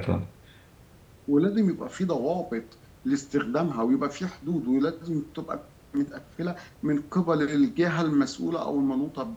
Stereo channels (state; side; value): identical; both; correlation 1.00